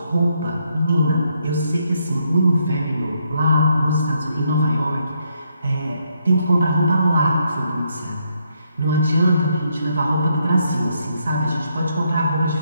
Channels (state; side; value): inverted; both; correlation -0.75